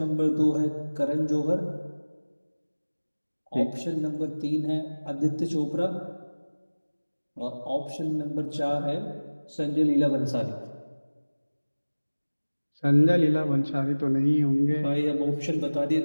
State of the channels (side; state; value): both; inverted; correlation -1.00